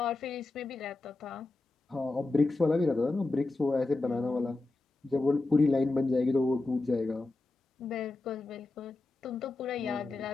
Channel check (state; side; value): quieter; right; 3.2 dB